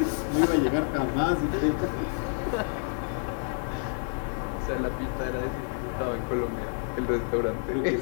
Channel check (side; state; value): right; silent; 59 dB below the other